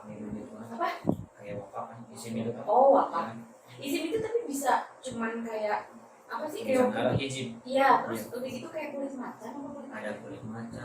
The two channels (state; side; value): identical; both; correlation 1.00